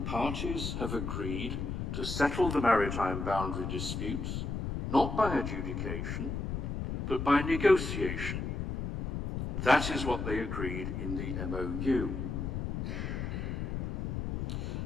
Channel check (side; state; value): left; noise; rumble, 3 dB below the sound